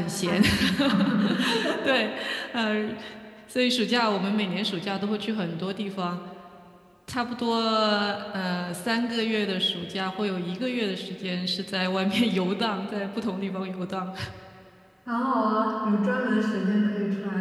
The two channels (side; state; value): both; identical; correlation 1.00